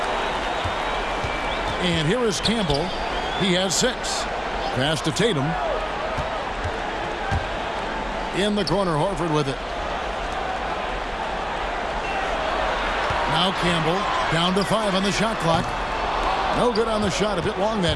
And here is Campbell. He has 6. Pass to Tatum. In the corner, Horford with it. Now Campbell down to 5 on the shot clock. No good on the shot, a bit long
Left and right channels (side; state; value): both; identical; correlation 1.00